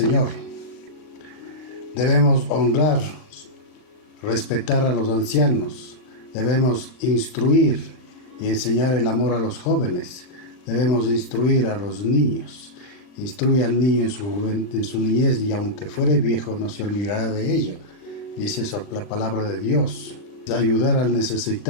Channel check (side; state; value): right; late; 39 ms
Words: Debemos honrar, respetar a los ancianos. Debemos instruir y enseñar el amor a los jóvenes. Debemos instruir a los niños. Instruye al niño en su niñez, y aunque fuere viejo no se olvidará de ello. Dice eso la palabra de Dios. Ayudar al